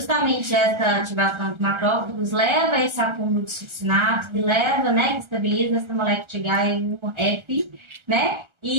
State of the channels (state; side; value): late; left; 1.4 ms